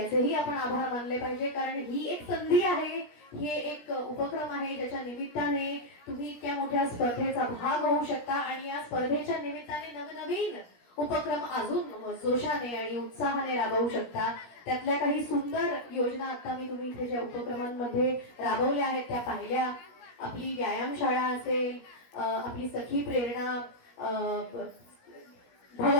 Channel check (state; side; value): late; right; 17 ms